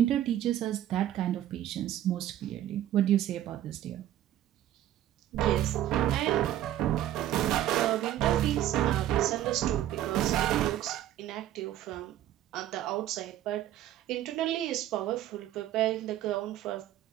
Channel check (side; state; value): left; quieter; 12.4 dB